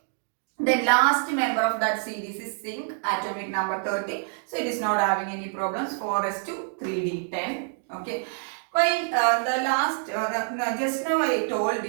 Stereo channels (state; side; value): silent; left; 56 dB below the other